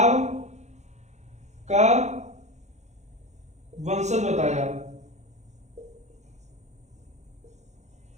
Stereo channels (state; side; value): late; left; 0.33 ms